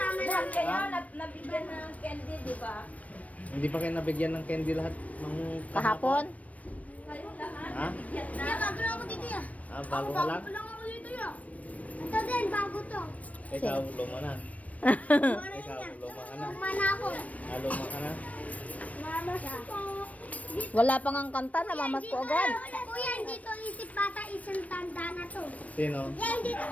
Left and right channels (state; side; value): late; right; 0.068 ms